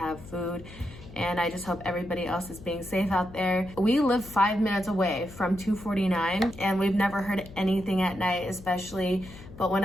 food. And I just hope everybody else is being safe out there. We live 5 minutes away from 249, and we've never heard anything at night, especially. But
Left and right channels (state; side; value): noise; left; hum, 17 dB below the sound